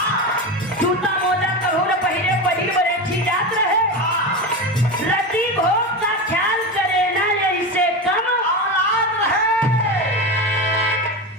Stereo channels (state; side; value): normal; both; correlation 0.21